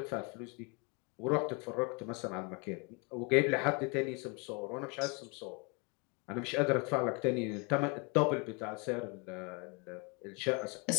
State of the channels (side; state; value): right; quieter; 31.9 dB